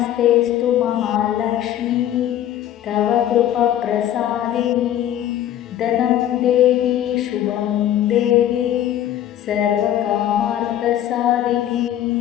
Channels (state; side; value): quieter; right; 11.7 dB